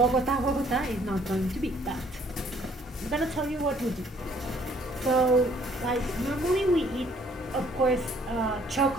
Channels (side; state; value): both; normal; correlation 0.62